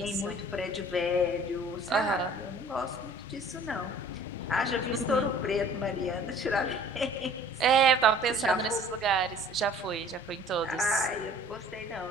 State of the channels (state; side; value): normal; both; correlation 0.51